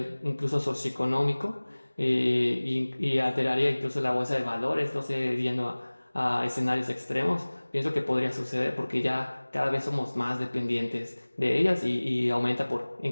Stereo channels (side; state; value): both; inverted; correlation -1.00